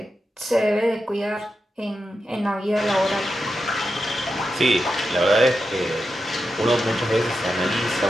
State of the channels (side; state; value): both; normal; correlation 0.89